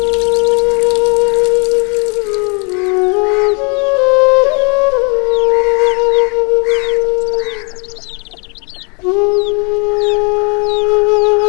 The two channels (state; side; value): quieter; right; 33.9 dB